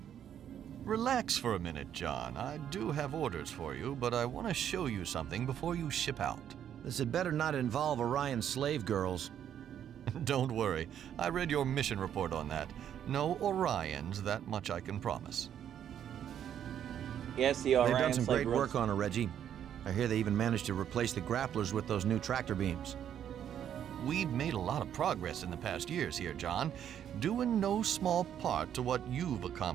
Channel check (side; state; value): left; quieter; 9.6 dB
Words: Relax for a minute, John. I do have orders for you, but I want to show you something before you ship out. This had better not involve Orion's slave girls. Don't worry. I read your mission report on that. No Orions, that much I can promise. Yes, the Orion They've done some slave great girls. work on her, Reggie. I hear they even managed to replace the grapplers with those new tractor beams. We've made a lot of progress in the past years here, John, due in no small part to what you've